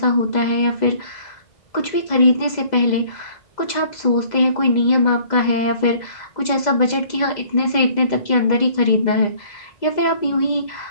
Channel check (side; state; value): right; late; 2.0 ms